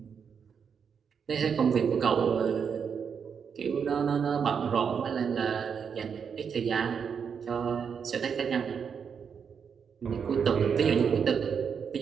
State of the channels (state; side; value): quieter; left; 6.8 dB